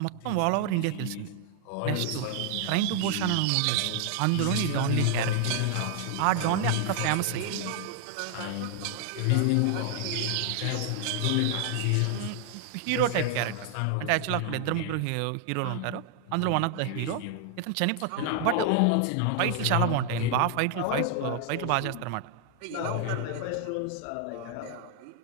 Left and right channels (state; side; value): different; both; correlation 0.00